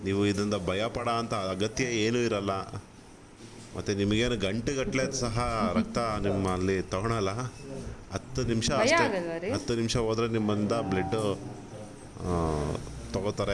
ನೀವು ಇದರಿಂದ ಭಯ ಪಡೋ ಅಂಥ ಅಗತ್ಯ ಏನೂ ಇರಲ್ಲ. ಮತ್ತು ನಿಮಗೇನು ಗಂಟೆಗಟ್ಟಲೆ ಸಹ ರಕ್ತ ನಿಮ್ಮಲ್ಲಿ ತೊಗೊಳಲ್ಲ. 10 ನಿಮಿಷ ಅಷ್ಟೇ, 10 ನಿಮಿಷ ಹೋದರೆ ನಿಮ್ಮಿಂದ ಬ್ಲಡ್ಡು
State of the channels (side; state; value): both; identical; correlation 1.00